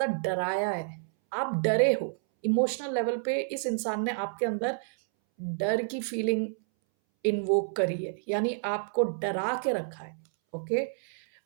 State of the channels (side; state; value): left; silent; 58 dB below the other